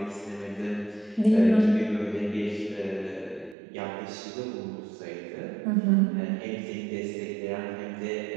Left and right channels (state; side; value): drops out; left; at 3.6 s